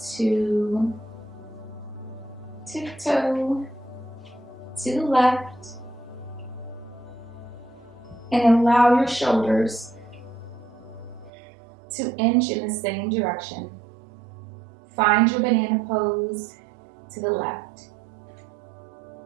to tiptoe to the left and allow your shoulders to inch in the same direction. Find your banana pose to the left.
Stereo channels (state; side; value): drops out; left; at 11.3 s